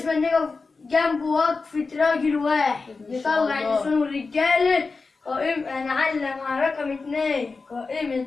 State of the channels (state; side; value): quieter; right; 4.2 dB